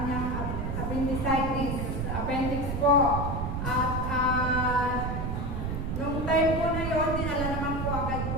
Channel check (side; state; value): right; noise; rumble, 3 dB below the sound